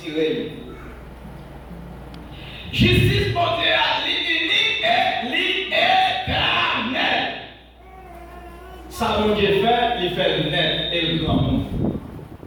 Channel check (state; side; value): identical; both; correlation 1.00